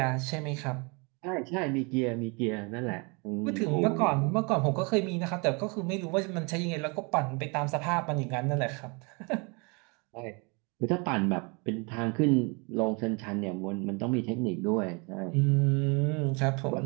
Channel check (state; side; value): quieter; left; 31.0 dB